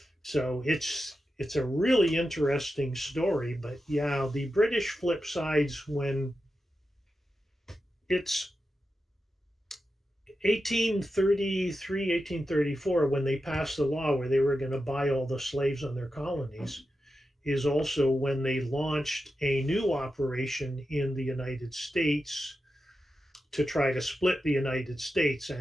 So it's a really interesting story. But yeah, the British flip sides when it's 1833, 1834, when they passed the law where they were going to buy all the slaves on their colonies, is also when they launched a new operation in the United States to try to split the United States.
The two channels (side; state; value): both; normal; correlation 0.90